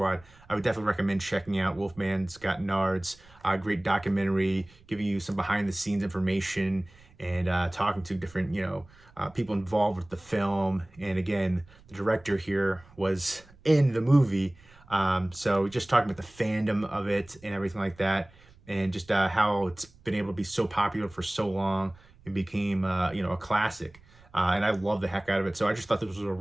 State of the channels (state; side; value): noise; right; rumble, 26 dB below the sound